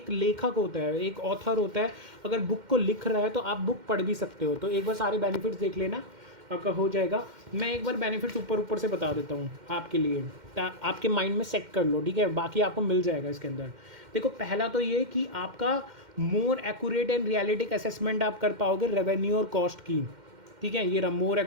लेखक होता है, एक ऑथर होता है, अगर बुक को लिख रहा है तो आप बुक पढ़ भी सकते हो। तो एक बार सारे बेनिफिट्स देख लेना, आपका हो जाएगा। मैं एक बार बेनिफिट्स ऊपर ऊपर से बता देता हूँ आपके लिए, आपके माइंड में सेट कर लो, ठीक है। बाकी आपको मिल जाएगा इसके अंदर। देखो, पहला तो ये कि आपका मोर एक्यूरेट एंड रियलिटिक असेसमेंट आप कर पाओगे रेवेन्यू और कॉस्ट की, ठीक है। ये मोर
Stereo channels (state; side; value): late; left; 2.1 ms